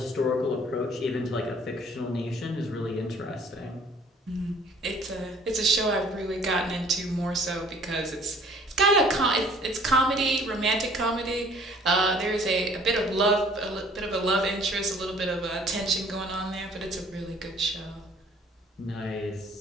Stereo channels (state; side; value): normal; both; correlation 0.54